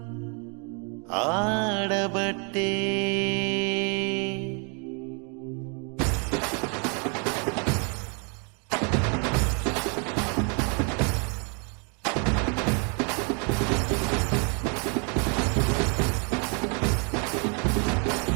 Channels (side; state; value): left; quieter; 37.4 dB